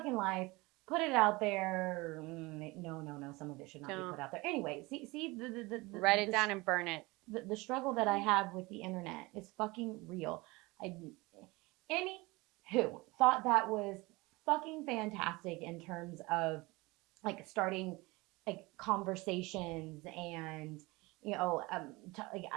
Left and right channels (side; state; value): left; quieter; 23.2 dB